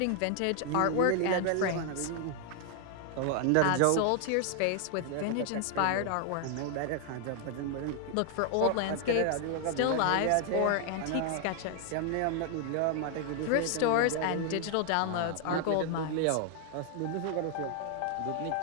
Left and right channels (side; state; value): both; different; correlation 0.00